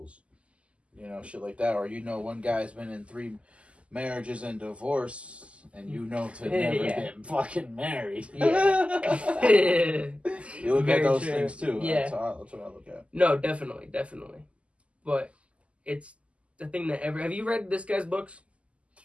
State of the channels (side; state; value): left; late; 0.059 ms